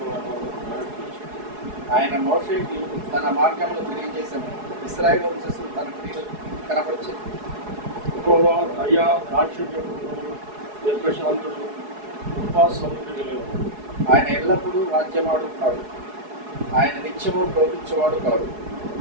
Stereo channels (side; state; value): left; late; 4.7 ms